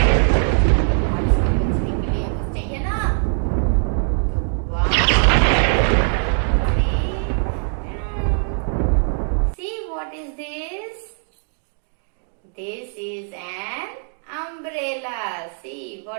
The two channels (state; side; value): silent; left; 65 dB below the other